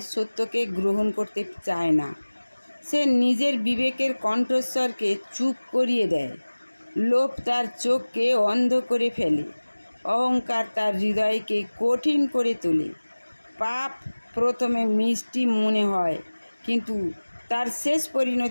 সত্যকে গ্রহণ করতে চায় না। সে নিজের বিবেকের কণ্ঠস্বরকে চুপ করিয়ে দেয়। লোভ তার চোখকে অন্ধ করে ফেলে। অহংকার তার হৃদয়কে কঠিন করে তোলে। পাপ প্রথমে মিষ্টি মনে হয়, কিন্তু তার শেষ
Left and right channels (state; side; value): inverted; both; correlation -1.00